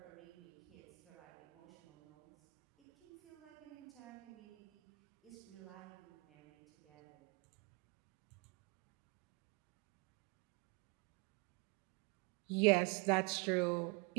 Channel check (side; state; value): left; quieter; 28.2 dB